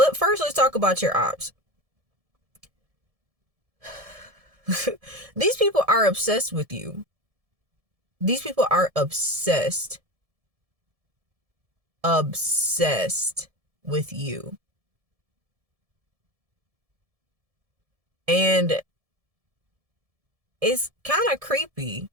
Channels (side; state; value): left; late; 1.7 ms